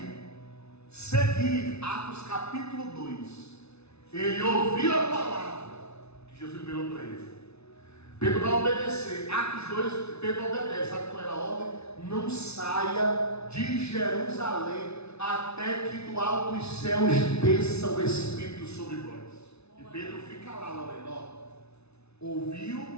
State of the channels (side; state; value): right; late; 0.80 ms